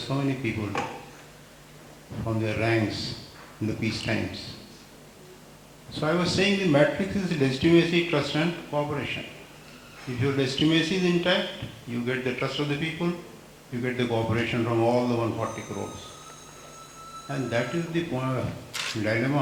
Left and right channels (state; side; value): identical; both; correlation 1.00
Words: so many people from their ranks in the peace times. So I was saying the matrix is legitimacy, trust and cooperation. If your legitimacy is intact, you get the trust of the people, you get the cooperation from all the 140 crores. And that is the